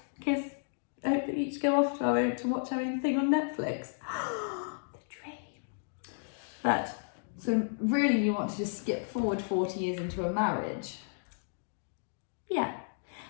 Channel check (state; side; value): silent; right; digital silence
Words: kiss. I hope that we each go off to watch our own thing on Netflix. The dream. But so really, you want to just skip forward 40 years into a marriage? yeah,